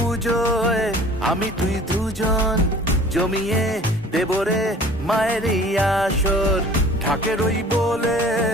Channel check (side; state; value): both; normal; correlation 0.48